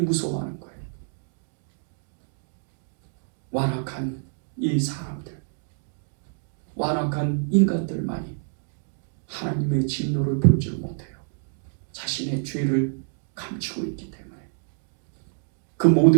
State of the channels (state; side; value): silent; left; digital silence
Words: 거예요. 완악한 이 사람들, 완악한 인간들만이 하나님의 진노를 보지 못해요. 자신의 죄를 감추고 있기 때문에. 그